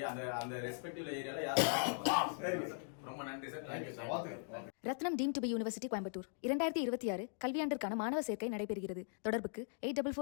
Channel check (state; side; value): silent; right; digital silence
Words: அந்த ரெஸ்பெக்டிவ் ஏரியால யார். ரொம்ப நன்றி sir. Thank you sir. Rathinam deemed to be university Coimbatore 2026 கல்வியாண்டிற்கான மாணவர் சேர்க்கை நடைபெறுகிறது. தொடர்புக்கு